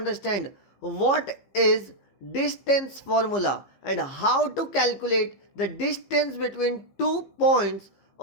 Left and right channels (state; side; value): late; right; 15 ms